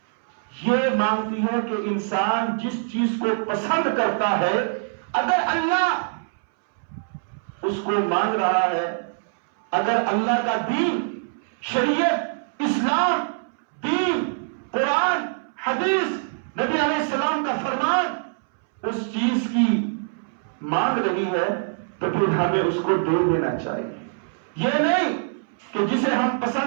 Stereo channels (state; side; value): silent; left; 62 dB below the other